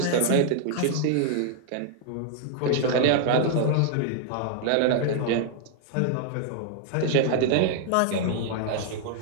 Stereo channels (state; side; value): different; both; correlation 0.00